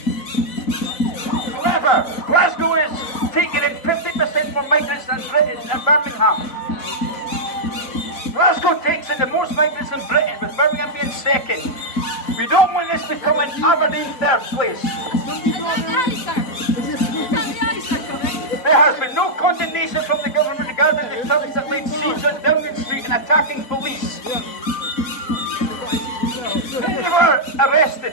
However, Glasgow is taking in 50% more migrants than Britain and Birmingham. Glasgow takes in the most migrants in Britain, with Birmingham being second. We don't want this becoming Aberdeen third place. There has been no condemnation from the government regarding the thugs that laid siege on Downing Street and attacking police. They were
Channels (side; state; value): right; late; 4.0 ms